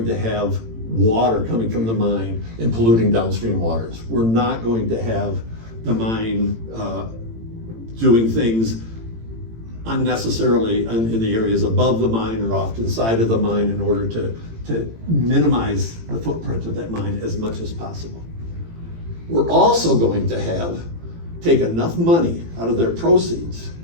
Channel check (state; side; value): late; left; 18 ms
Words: to have water coming from the mine and polluting downstream waters. We're not going to have the mine doing things unnecessarily in the areas above the mine or off to the side of the mine in order to minimize the footprint of that mine as much as possible. We're also going to take enough money out of their proceeds